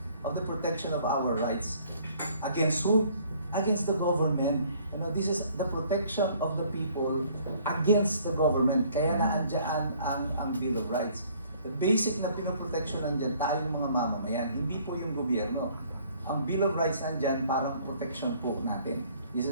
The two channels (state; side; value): inverted; both; correlation -0.59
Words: of the protection of our rights. Against who? Against the government. This is the protection of the people against the government. Kaya naandyan ang Bill of Rights. The basic na pinoprotection nandiyan tayong mga mamamayan, hindi po yung gobyerno. Ang Bill of Rights nandiyan para protection po natin. This